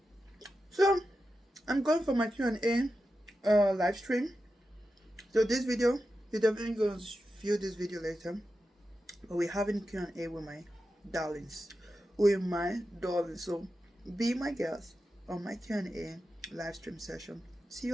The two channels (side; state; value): both; normal; correlation 0.90